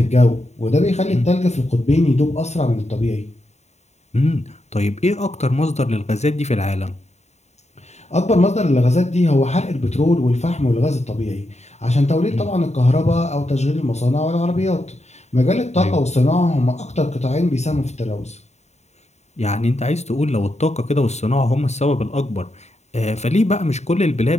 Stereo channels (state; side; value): late; right; 0.32 ms